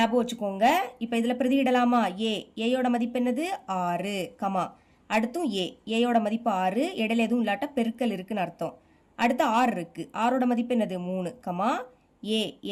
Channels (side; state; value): both; identical; correlation 1.00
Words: வச்சுக்கோங்க. இப்போ இதில் பிரதியிடலாமா? ஏயோட மதிப்பு என்னது? 6, அடுத்தும் ஏயோட மதிப்பு 6, இடையில எதுவும் இல்லாட்ட பெருக்கல் இருக்குன்னு அர்த்தம். அடுத்து ஆர் இருக்கு. ஆரோட மதிப்பு என்னது? 3,